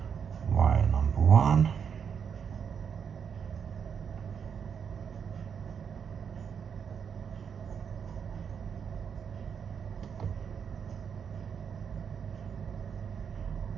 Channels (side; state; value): left; quieter; 7.1 dB